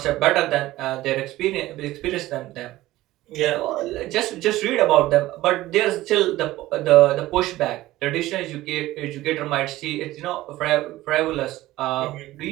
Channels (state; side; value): quieter; left; 16.6 dB